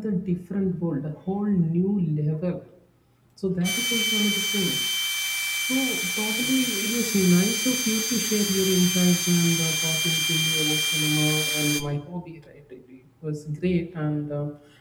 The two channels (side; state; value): both; identical; correlation 1.00